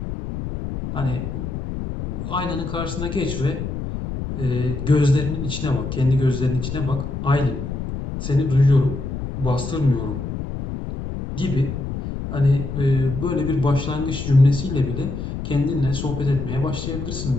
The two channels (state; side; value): noise; left; rumble, 5 dB below the sound